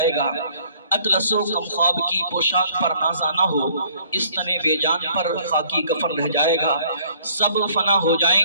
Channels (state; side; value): inverted; both; correlation -0.59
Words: گا۔ اطلس و کم خواب کی پوشاک پر نازا نہ ہو، اس تنے بے جان پر خاکی کفن رہ جائے گا۔ سب فنا ہو جائیں